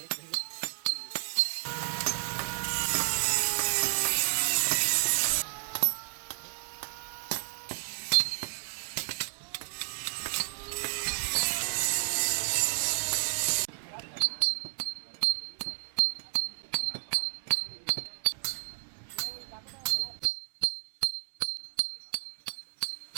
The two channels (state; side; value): silent; left; 57 dB below the other